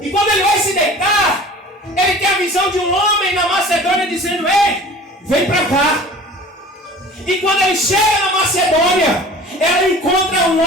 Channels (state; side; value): normal; both; correlation 0.43